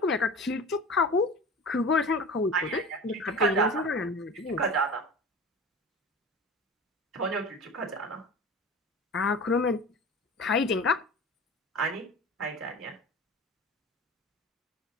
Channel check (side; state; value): both; normal; correlation 0.35